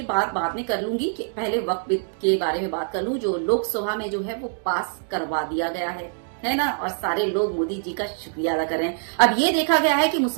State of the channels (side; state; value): left; silent; digital silence